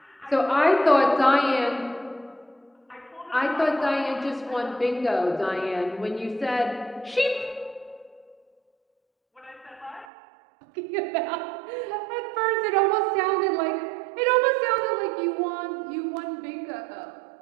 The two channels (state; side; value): drops out; left; at 10.1 s